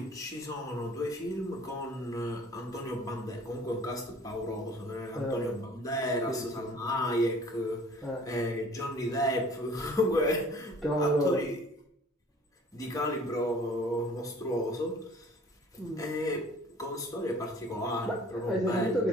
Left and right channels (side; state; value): both; normal; correlation 0.50